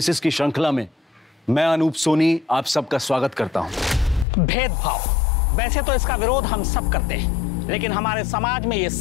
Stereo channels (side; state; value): right; drops out; at 4.2 s